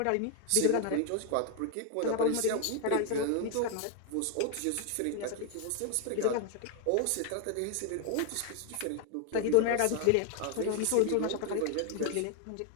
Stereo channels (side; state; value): both; different; correlation 0.01